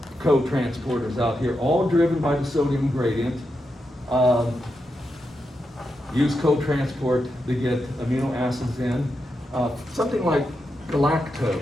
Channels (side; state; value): both; normal; correlation 0.86